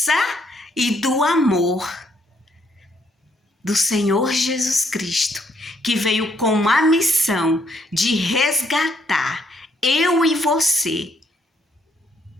e do amor do Senhor Jesus Cristo, que veio com a missão de resgatar eu e você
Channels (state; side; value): normal; both; correlation 0.71